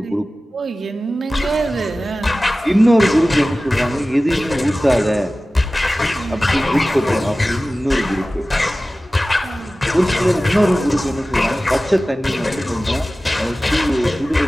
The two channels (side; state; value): both; normal; correlation 0.96